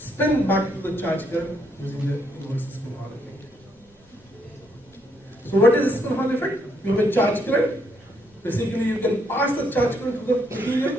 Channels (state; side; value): normal; both; correlation 0.73